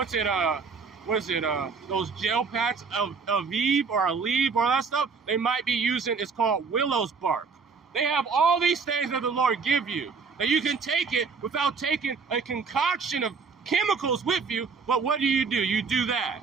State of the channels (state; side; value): quieter; left; 5.2 dB